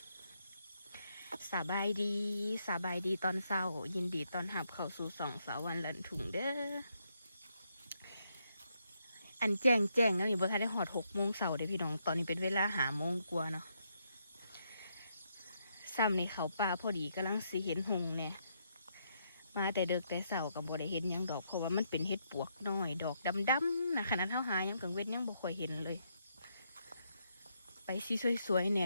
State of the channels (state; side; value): inverted; both; correlation -0.77